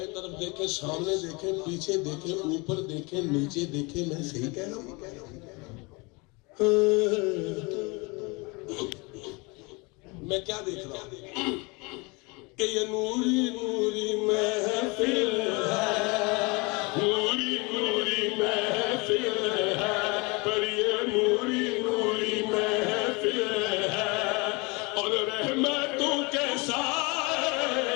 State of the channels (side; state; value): right; quieter; 27.7 dB